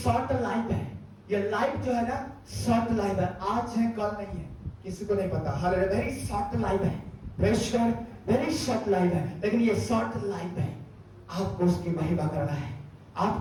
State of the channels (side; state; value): both; identical; correlation 1.00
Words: लाइफ है। ये लाइफ जो है ना शॉर्ट लाइफ है, आज है कल नहीं है, किसी को नहीं पता। हालेलुया, वेरी शॉर्ट लाइफ है, praise God, very short life है। लेकिन ये शॉर्ट लाइफ है, आपको उसकी महिमा करना है,